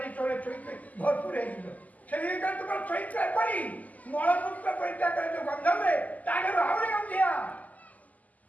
ଚରିତ୍ରରେ ଭରପୁର ହେଇଯିବ ସେଇ ତୁମର ଚରିତ୍ର କରି मलमूत्र परित्याग करे जो गंधम रे तागर आवरे गंधिया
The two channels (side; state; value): right; late; 0.078 ms